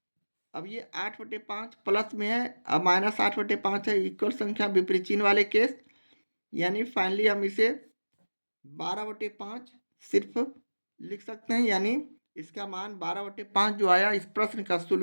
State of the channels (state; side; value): inverted; both; correlation -1.00